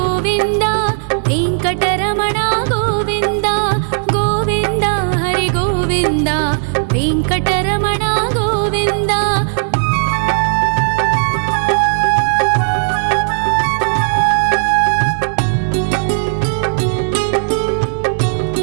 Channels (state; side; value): silent; left; digital silence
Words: वेङ्कटरमण गोविन्द गोविन्द हरि गोविन्द वेङ्कटरमण गोविन्द।